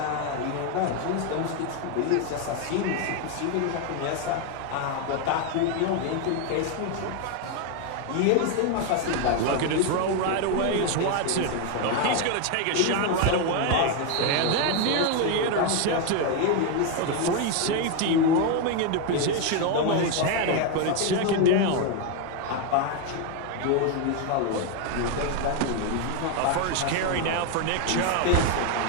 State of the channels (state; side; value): different; both; correlation 0.01